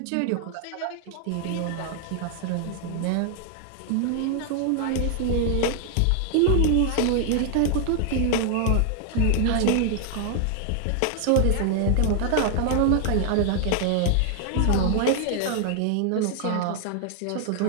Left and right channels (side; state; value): both; different; correlation 0.00